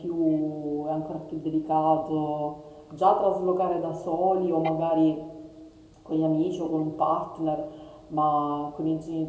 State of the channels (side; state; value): both; identical; correlation 1.00